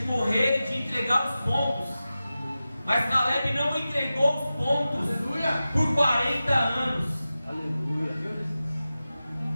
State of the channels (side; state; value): both; inverted; correlation -0.94